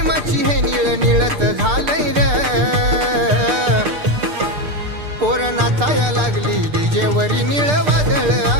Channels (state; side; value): late; left; 6.7 ms